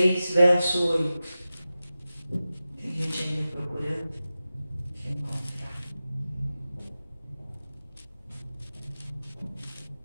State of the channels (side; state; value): both; inverted; correlation -0.94